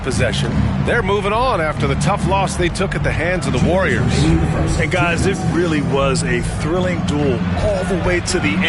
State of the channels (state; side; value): identical; both; correlation 1.00